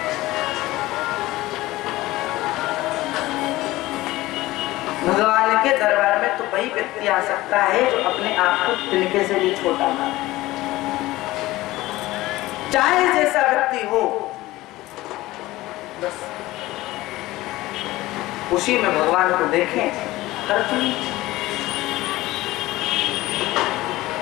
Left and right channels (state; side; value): quieter; right; 18.0 dB